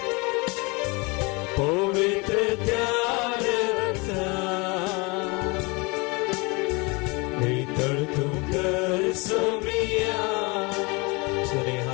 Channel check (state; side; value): quieter; right; 27.8 dB